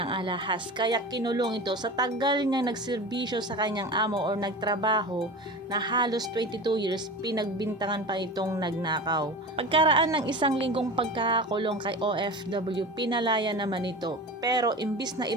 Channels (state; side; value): normal; both; correlation 0.32